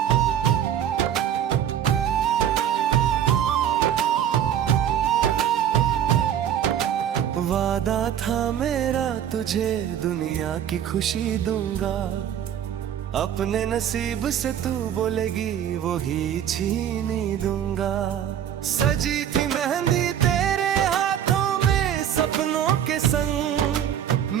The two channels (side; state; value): left; quieter; 9.9 dB